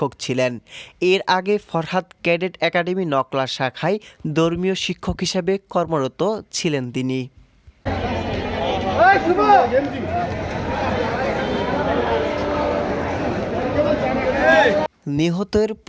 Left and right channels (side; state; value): both; identical; correlation 1.00